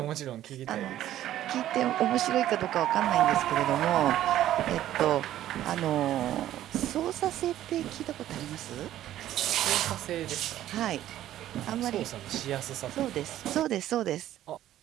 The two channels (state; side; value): quieter; left; 12.8 dB